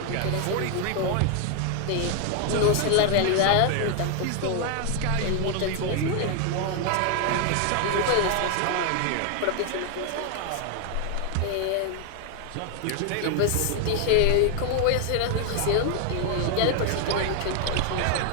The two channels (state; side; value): different; both; correlation 0.00